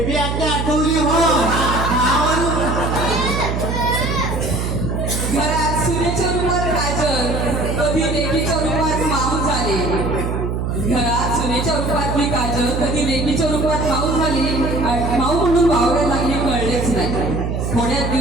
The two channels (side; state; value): right; noise; hum, 2 dB below the sound